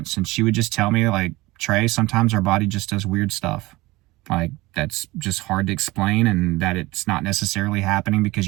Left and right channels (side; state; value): left; quieter; 20.7 dB